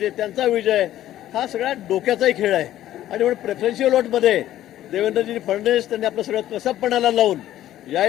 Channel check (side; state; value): right; quieter; 13.1 dB